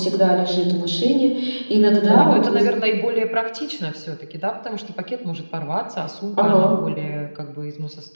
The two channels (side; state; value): both; inverted; correlation -1.00